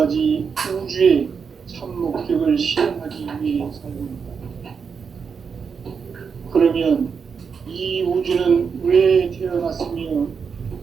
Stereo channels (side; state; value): left; quieter; 6.0 dB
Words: 우주의 참 목적을 실현하기 위해 살고 있다. 그러면 이 우주는 왜 태어났으며